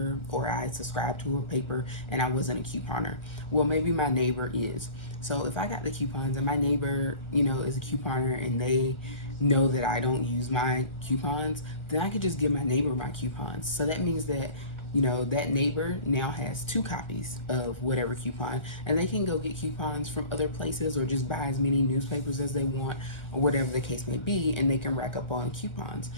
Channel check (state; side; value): late; right; 1.4 ms